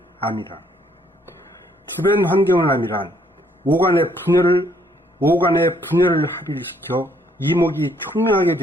암이라. 주변 환경을 암이란 오간의 분열을 합일시켜 이목이 총명하게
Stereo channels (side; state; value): both; normal; correlation 0.67